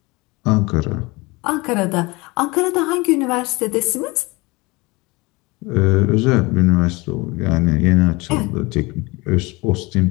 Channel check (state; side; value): quieter; right; 24.2 dB